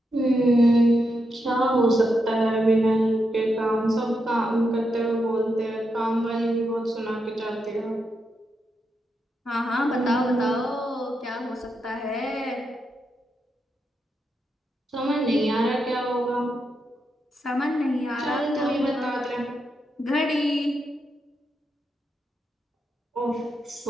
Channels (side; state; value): both; normal; correlation 0.84